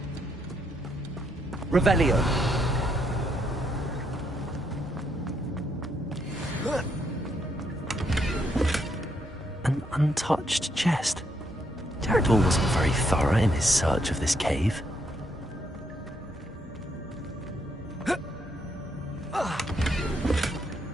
Revelio. An untouched chest. Jackdaw wasn't very thorough in his search of this cave.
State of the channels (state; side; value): normal; both; correlation 0.75